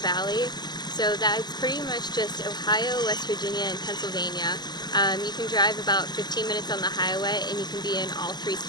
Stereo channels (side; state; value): right; late; 0.20 ms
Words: Valley, so that's pretty much just Ohio, West Virginia, and Pennsylvania. You can drive about 15 minutes on the highway and you can be in all 3